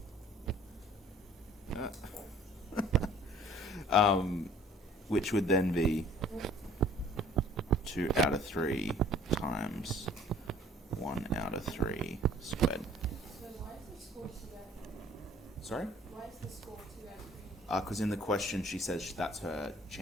Which would then be 2 out of 3 times 1 out of 3 squared. So why is the score 2 out of 3? Sorry? Why is the score 2 out of 3? Because in the question she says that's her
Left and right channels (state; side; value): normal; both; correlation 0.53